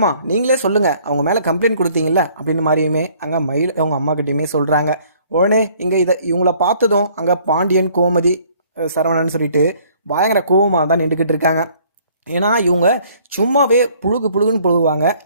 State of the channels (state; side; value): inverted; both; correlation -0.59